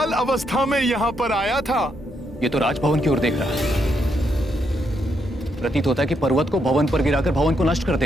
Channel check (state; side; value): normal; both; correlation 0.78